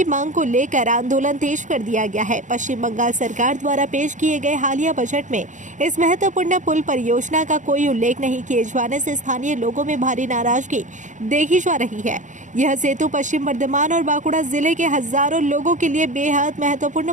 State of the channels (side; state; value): left; late; 0.36 ms